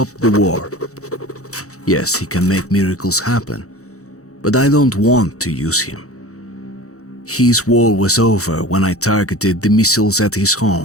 the war. Yes, he can make miracles happen, but I don't want to use him. His war was over when I targeted the missiles at his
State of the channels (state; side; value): late; right; 0.65 ms